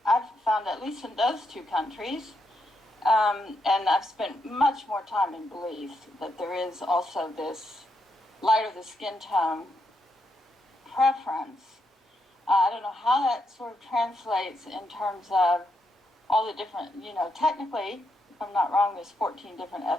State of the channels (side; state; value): both; normal; correlation 0.80